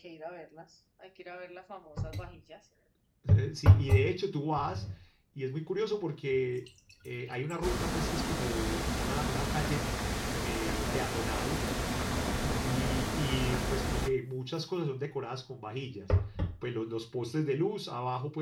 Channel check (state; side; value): identical; both; correlation 1.00